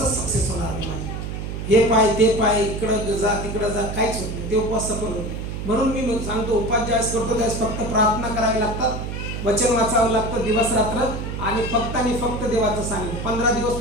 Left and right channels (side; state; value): right; noise; hum, 5 dB below the sound